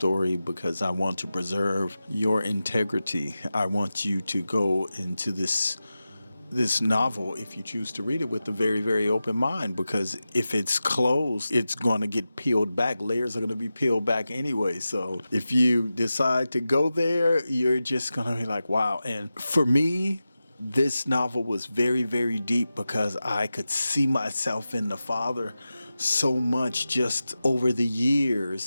because I want to preserve your integrity. I want you to go into this novel, if you choose to read it, with a very, very open mind, because if it's closed, it's going to get peeled back. Layers are going to be peeled back anyway. So if you decide to go there, you're just going to be like, wow. And for me, this novel was very, very deep because I could see myself in the father so much just over the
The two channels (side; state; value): both; inverted; correlation -0.93